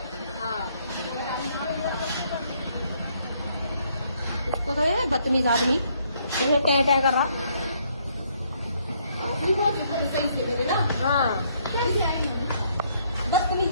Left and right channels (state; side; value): inverted; both; correlation -0.69